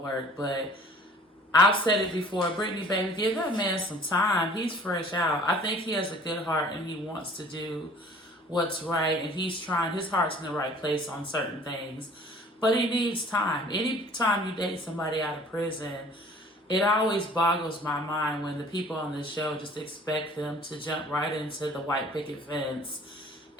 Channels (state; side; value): normal; both; correlation 0.50